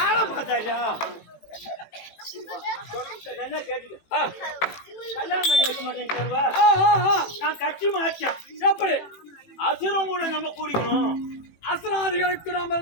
நல்லா கேட்டுக்க கல்யாணம் பண்ணி வைக்க மாட்டேன்னு நான் கட்சி மாற்றேன் எப்படி அசுரம் கூட நம்ம கூடிக்கணும் அசுராதிகளுக்கு நாம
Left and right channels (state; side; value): late; right; 18 ms